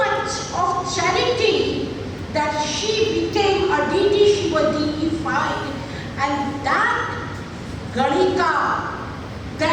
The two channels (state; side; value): identical; both; correlation 1.00